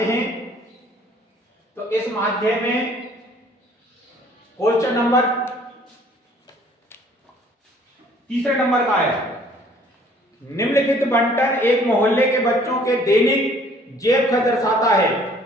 हैं। तो इस माध्य में क्वेश्चन नंबर तीसरे नंबर का है, निम्नलिखित बंटन एक मोहल्ले के बच्चों के दैनिक जेब खर्च दर्शाता है।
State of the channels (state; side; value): normal; both; correlation 0.57